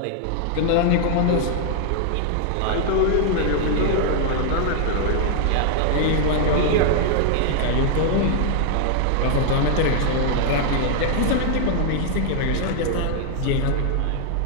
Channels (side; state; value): both; different; correlation 0.00